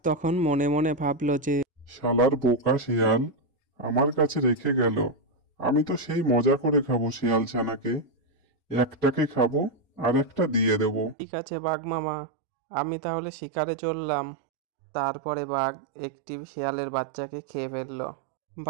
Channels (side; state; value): left; drops out; at 11.2 s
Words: তখন মনে মনে ভাবলো যে শালার বোকা শিয়াল আমার কাছে রেখে গেল। আমি তো সেই মজা করে খাবো শিয়াল ছানাকে। একটাকে খাবো আর একটা দিয়ে দেবো। ঠিক আছে বাঘ মামা, আমি তাহলে শিকারে চললাম। তারপরে বাঘ একটি শিয়ালের বাচ্চাকে খেয়ে ফেলল।